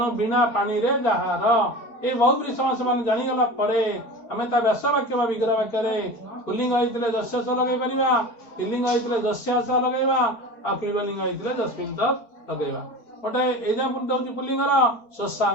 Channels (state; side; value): late; right; 4.5 ms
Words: बिना पानी रे जहार ये बहुब्री समास मान जानीगला आम व्यास वाक्य विग्रह वाक्य पुलिंग होते जस्य स लगे पार स्त्रीलिंग होते जस्यास लगे क्लीबलिंग होते जस्मिन तत् लगे। गोटे एग्जांपल दौर पुलिंगर